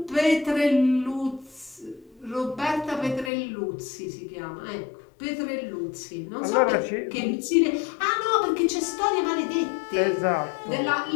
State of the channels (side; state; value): right; drops out; at 3.3 s